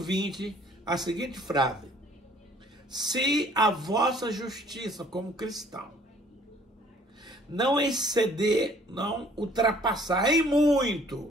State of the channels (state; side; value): normal; both; correlation 0.57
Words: a seguinte frase: se a vossa justiça como cristão não exceder, não ultrapassar em